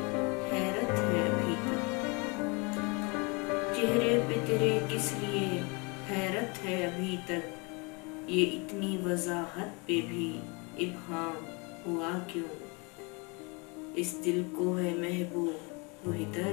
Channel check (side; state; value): right; quieter; 30.1 dB